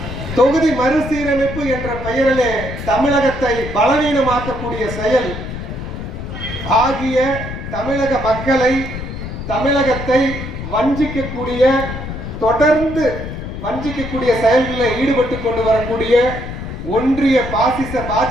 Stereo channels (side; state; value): left; noise; rumble, 8 dB below the sound